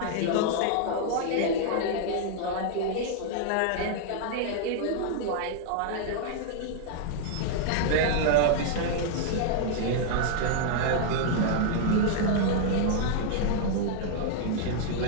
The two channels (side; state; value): both; different; correlation -0.01